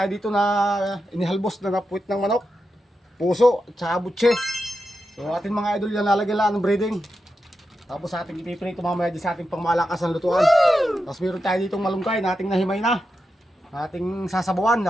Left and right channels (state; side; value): normal; both; correlation 0.88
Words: dito na inihalbos na napuwit ng manok, puso at saka butse. So ating mga idol yan, lalagyan lang ng breading. Tapos ating ipiprito mamaya sa ating pangmalakasan lutuan. Tapos meron tayo ditong malunggay na ating nahimay na. Ating sasabawan,